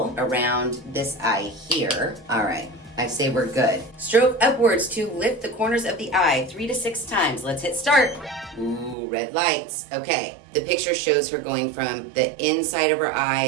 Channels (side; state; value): left; drops out; at 9.0 s